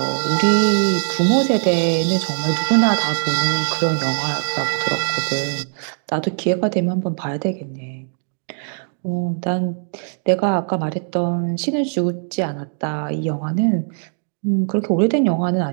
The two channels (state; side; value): silent; left; digital silence